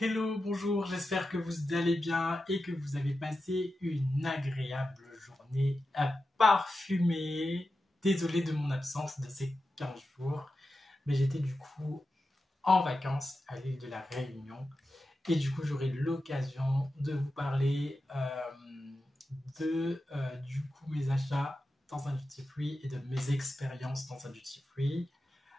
bonjour, j'espère que vous allez bien et que vous avez passé une agréable journée à parfumer. Désolé de mon absence de ces 15 jours, mais j'étais du coup en vacances à l'île de la Réunion et du coup j'aurai l'occasion de vous parler de du coup mes achats dans un duty free et de mes expériences dans un duty free.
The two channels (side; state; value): both; normal; correlation 0.91